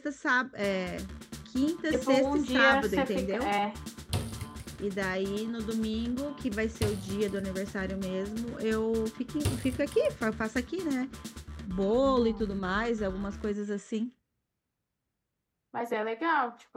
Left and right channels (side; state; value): both; identical; correlation 1.00